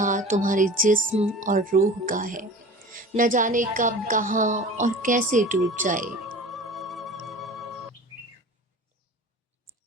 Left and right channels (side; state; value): both; normal; correlation 0.39